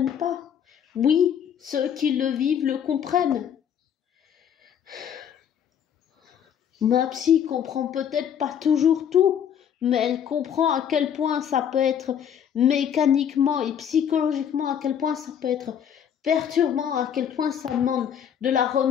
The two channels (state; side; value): quieter; right; 8.7 dB